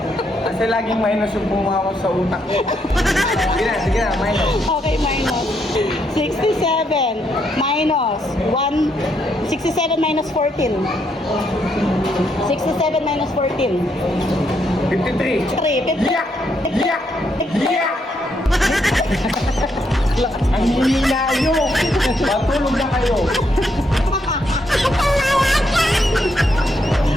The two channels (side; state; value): both; normal; correlation 0.76